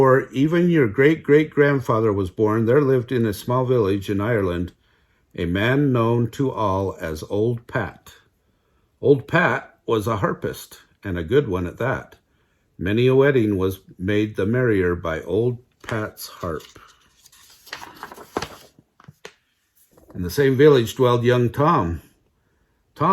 even your great-great-grandfather was born, there lived in a small village in Ireland a man known to all as Old Pat. Old Pat was a harpist, and a good one at that. Many a wedding was made the merrier by Old Pat's harp. In the same village dwelled young Tom.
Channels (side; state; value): both; identical; correlation 1.00